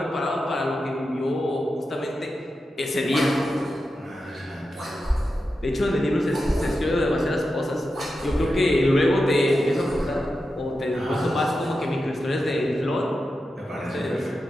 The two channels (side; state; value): both; normal; correlation 0.90